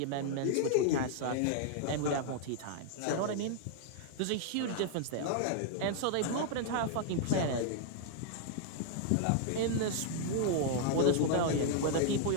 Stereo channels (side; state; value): both; different; correlation 0.00